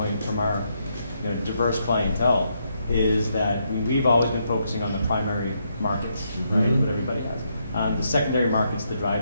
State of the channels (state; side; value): inverted; both; correlation -0.78